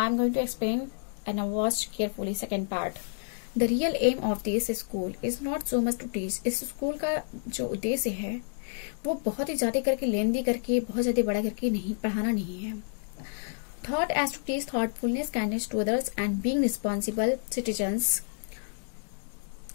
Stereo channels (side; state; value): right; silent; digital silence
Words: am going to explain and now watch carefully second part. The real aim of this school is not so much to teach. इस school का जो उद्देश्य है वो बहुत ही ज्यादा करके लेंदी करके बहुत ज्यादा बड़ा करके नहीं पढ़ाना नहीं है. Thought as to teach thoughtfulness, kindness to others and being responsible citizens.